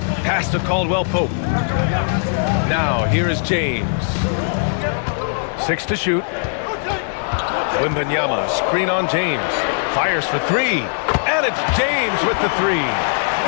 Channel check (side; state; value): right; silent; digital silence